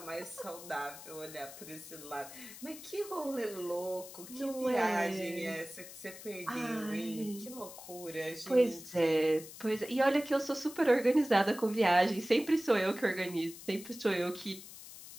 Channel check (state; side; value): noise; left; hiss, 15 dB below the sound